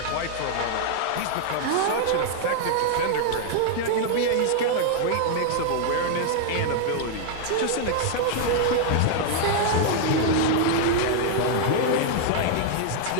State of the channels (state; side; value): different; both; correlation 0.00